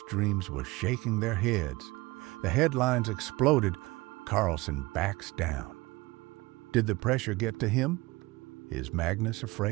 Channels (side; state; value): left; quieter; 21.8 dB